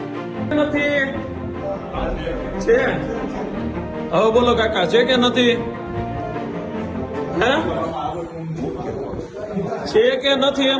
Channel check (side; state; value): both; identical; correlation 1.00